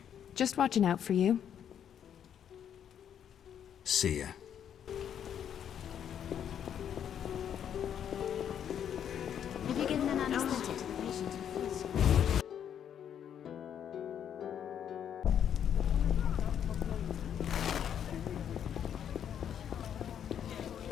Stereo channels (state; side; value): quieter; right; 9.1 dB